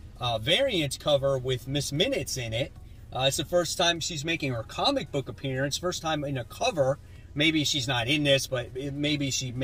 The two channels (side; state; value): both; identical; correlation 1.00